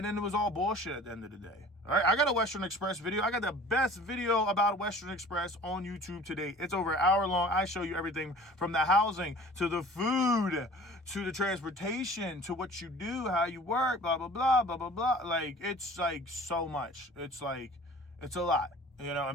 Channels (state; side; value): normal; both; correlation 0.45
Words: then it was all bullshit at the end of the day. All right, I got a Western Express video. I got the best video about Western Express on YouTube today. It's over an hour long. I show you everything from the housing to the food to the transportation to what you do, how you work, blah, blah, blah, blah, blah, blah. Like, it's like so much. It's a lot.